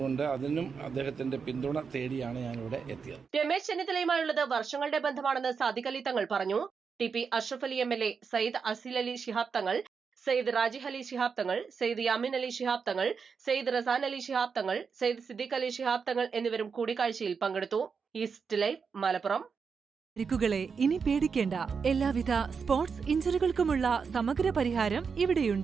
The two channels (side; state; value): left; quieter; 5.7 dB